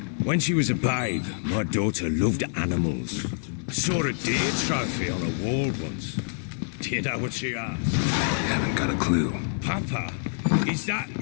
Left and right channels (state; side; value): silent; right; digital silence